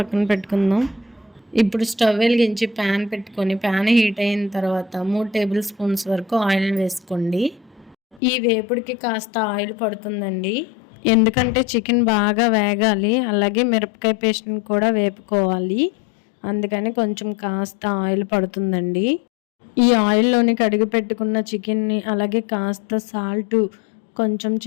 పెట్టుకుందాం. ఇప్పుడు స్టవ్ వెలిగించి ప్యాన్ పెట్టుకొని ప్యాన్ హీట్ అయిన తర్వాత 3 టేబుల్ స్పూన్స్ వరకు ఆయిల్ వేసుకోండి. ఈ వేపుడికి కాస్త ఆయిల్ పడుతుందండి. ఎందుకంటే చికెన్ బాగా వేగాలి. అలాగే మిరపకాయ పేస్ట్‌ని కూడా వేపుకోవాలి. అందుకని కొంచెం కాస్త ఆయిల్ పడుతుందండి. ఈ ఆయిల్‌లోని కడిగి పెట్టుకున్న చికెన్‌ని అలాగే కాస్త సాల్టు, కొంచెం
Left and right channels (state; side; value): drops out; right; at 8.2 s